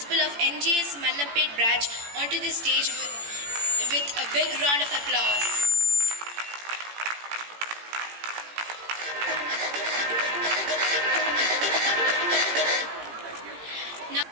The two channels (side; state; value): left; late; 18 ms